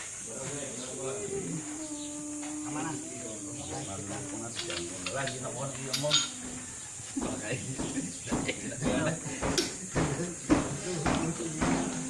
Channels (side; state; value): both; identical; correlation 1.00